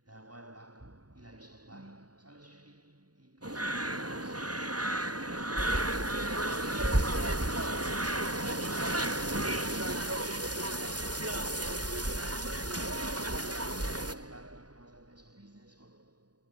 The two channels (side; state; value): left; late; 0.69 ms